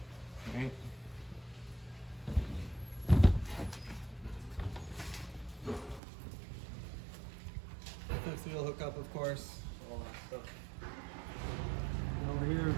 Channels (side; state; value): left; drops out; at 6.0 s